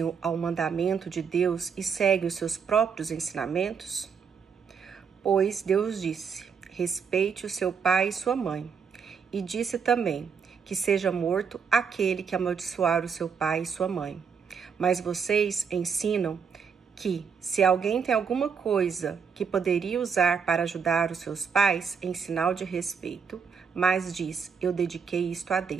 ao mandamento de Deus e seguem os seus próprios ensinamentos? Pois Deus disse: respeite o seu pai e sua mãe. E disse também que seja morto aquele que amaldiçoar o seu pai e sua mãe. Mas vocês ensinam que, se alguém tem alguma coisa que poderia usar para ajudar os seus pais em sinal de respeito, mas diz: eu dediquei isto a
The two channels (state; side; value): quieter; left; 6.3 dB